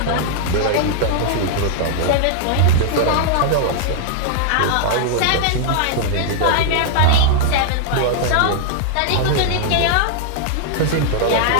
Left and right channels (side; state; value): both; different; correlation -0.01